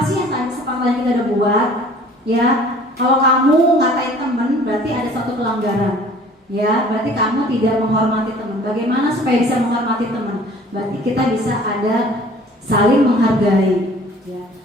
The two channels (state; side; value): normal; both; correlation 0.51